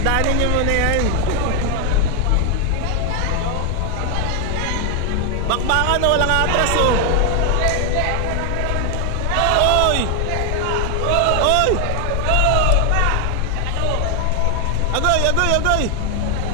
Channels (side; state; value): both; different; correlation 0.00